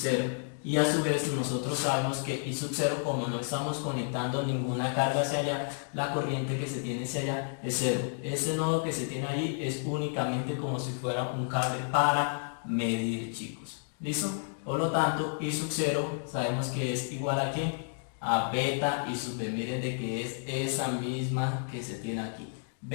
y a su vez nosotros sabemos que I sub 0, como no estamos conectando ninguna carga hacia allá, la corriente que se tiene hacia allá es 0. Este nodo que se tiene ahí es únicamente como si fuera un cable para medir, chicos. ¿Listo? Por lo tanto, I sub 0 sabemos que es igual a ¿quién? A beta I sub B. Miren de que es esa misma que se tiene aquí,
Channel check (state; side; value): silent; right; digital silence